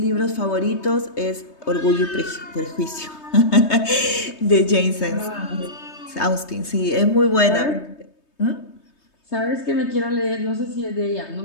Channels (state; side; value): late; right; 3.2 ms